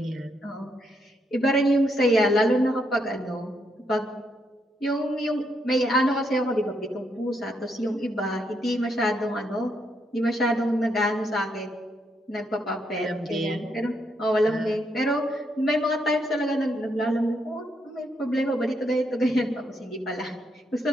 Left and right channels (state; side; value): normal; both; correlation 0.77